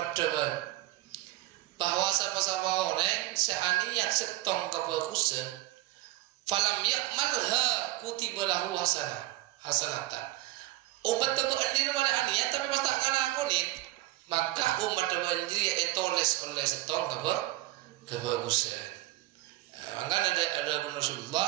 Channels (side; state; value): left; quieter; 17.5 dB